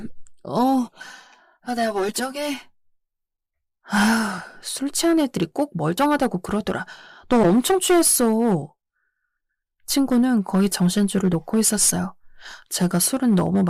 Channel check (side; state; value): both; identical; correlation 1.00